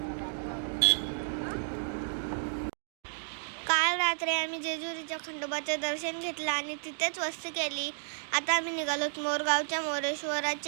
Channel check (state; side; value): silent; left; digital silence